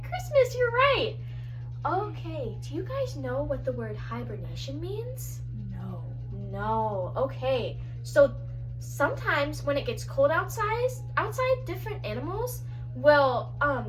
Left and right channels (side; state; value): both; identical; correlation 1.00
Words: Christmas. You're right. Okay, do you guys know what the word hibernation means? No. Okay, so sometimes when it gets cold outside, different animals will